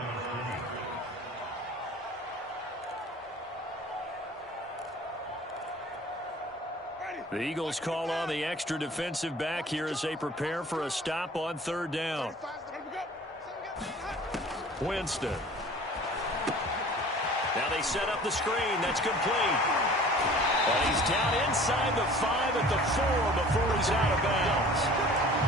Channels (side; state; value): both; normal; correlation 0.46